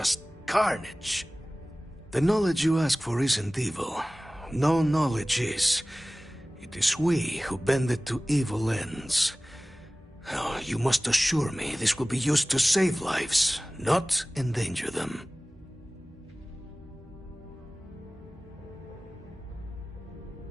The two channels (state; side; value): normal; both; correlation 0.98